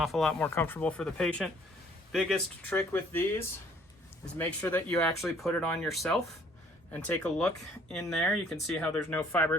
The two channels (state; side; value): normal; both; correlation 0.60